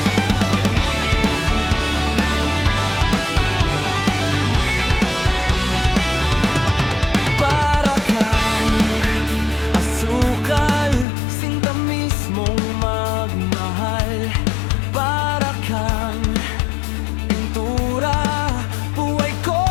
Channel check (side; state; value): right; drops out; at 11.1 s